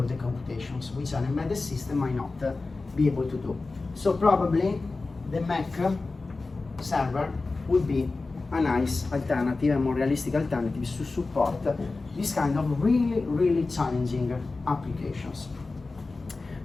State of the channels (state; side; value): quieter; right; 3.7 dB